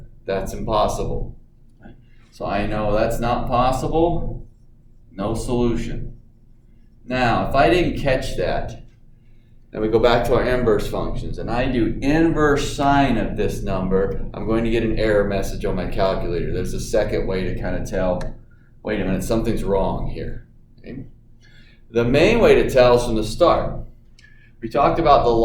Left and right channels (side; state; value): both; identical; correlation 1.00